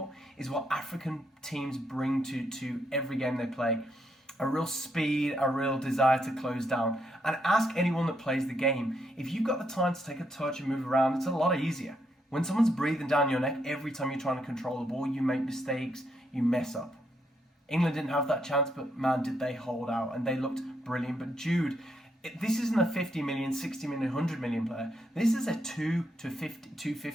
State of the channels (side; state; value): both; normal; correlation 0.77